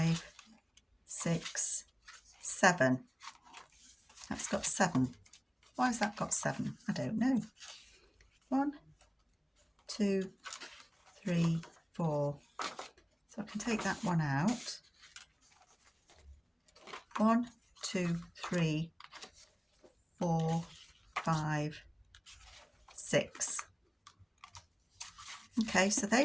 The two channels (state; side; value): identical; both; correlation 1.00